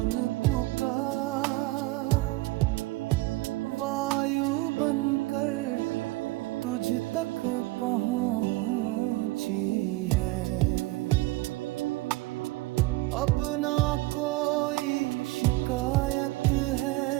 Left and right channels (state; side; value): quieter; left; 20.5 dB